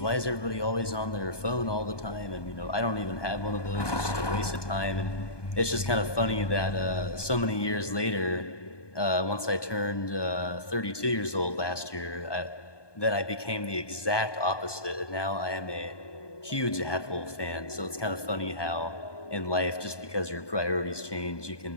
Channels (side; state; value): right; late; 1.2 ms